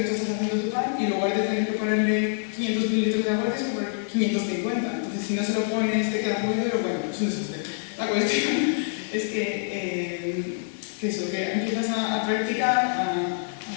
tú estás haciendo tu pan y en lugar de tener que ponerle 500 mililitros de agua, tienes que poner 550. Entonces, si no se lo pones, te queda muy duro, bueno, es un desastre. La cuestión es que empiezas a practicar, a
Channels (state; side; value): silent; right; digital silence